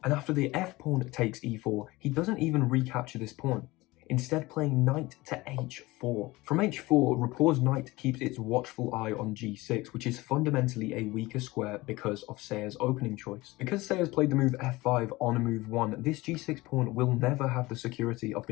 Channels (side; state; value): right; quieter; 20.6 dB